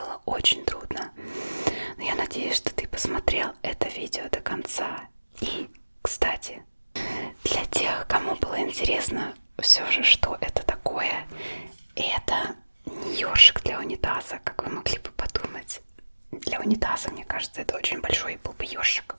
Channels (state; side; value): inverted; both; correlation -1.00